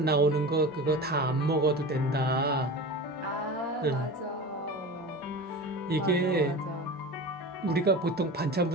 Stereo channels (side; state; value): both; normal; correlation 0.32